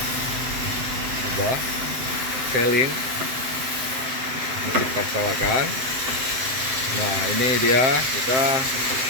kubah selling Masjid Parsalakan. Nah, ini dia, kita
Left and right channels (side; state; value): left; late; 7.7 ms